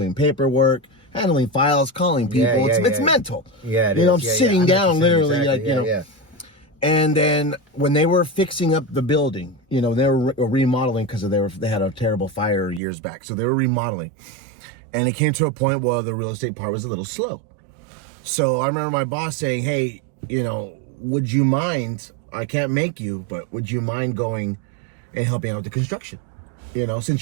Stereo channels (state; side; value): drops out; left; at 12.8 s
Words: paperwork, handling files, calling people. It's mental. Yeah, it you know, is. I'm sitting down literally, exactly. like, you know. Yeah. And then when they were fixing up the building, you know, they were remodeling because they had a terrible fire years back. So they were remodeling. And it came to a point where the real estate part was a little slow. So I remember my boss saying, hey, you know, would you mind, I can't make you, but would you mind going and helping out with the construction? You know,